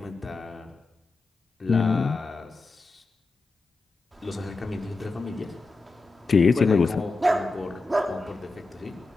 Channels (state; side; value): quieter; right; 3.5 dB